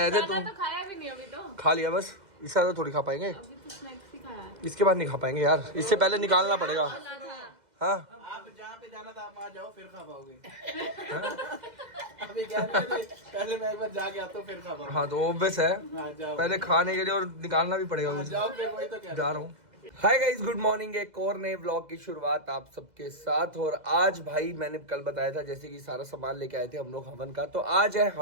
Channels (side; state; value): left; late; 2.0 ms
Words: थे खाना तुम? तो खाया भी नहीं अभी तो। खा लिया बस, इससे ज्यादा थोड़ी खा पाएंगे। अभी तो स्नैक्स ही खाया है। इसके बाद नहीं खा पाएंगे यार, इससे पहले निकालना पड़ेगा। हाँ आप जहाँ पे जाना था आप वहाँ जाओ, फिर खा पाओगे। अभी क्या पहले मैं एक बार जाके आता हूँ, फिर खा पाऊंगा। हाँ, तो ऑब्वियस है, हाँ, जाओ। पहले खाने के लिए और निकालना भी पड़ेगा हाँ, मुझे। जाओ फिर, वही तो कह जा रहा हूँ। Hi guys, good morning. एक और नए ब्लॉग की शुरुआत आप सबके साथ। और आज भाई मैंने कल बताया था जैसे कि सारा सामान लेके आए थे हम लोग हवन का, तो आज है